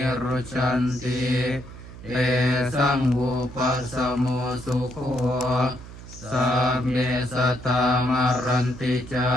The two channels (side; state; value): right; noise; hum, 15 dB below the sound